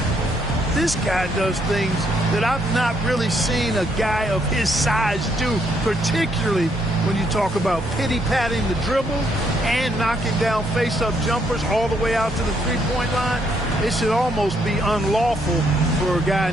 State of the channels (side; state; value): both; normal; correlation 0.72